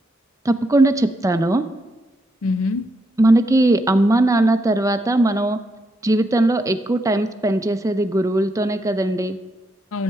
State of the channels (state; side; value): normal; both; correlation 0.80